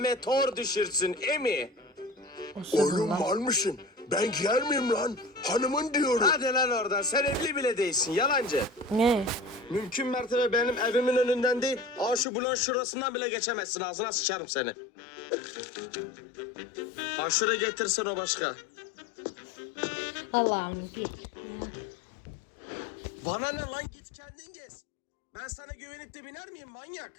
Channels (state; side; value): drops out; right; at 12.2 s